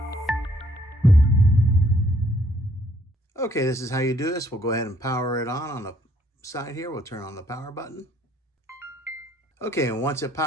Okay, this is how you do this. We'll go ahead and power it on the side here. We'll turn on the power button. Okay, and once it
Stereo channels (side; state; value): both; normal; correlation 0.66